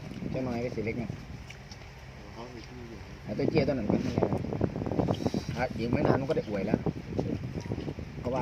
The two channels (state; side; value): identical; both; correlation 1.00